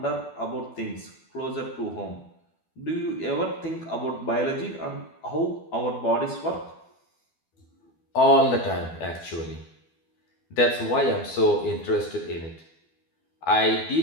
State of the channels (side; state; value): right; late; 12 ms